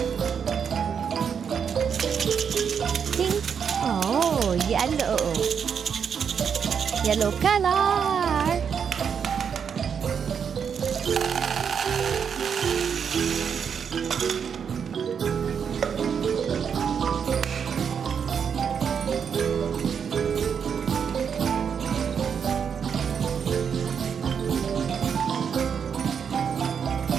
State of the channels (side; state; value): left; quieter; 7.1 dB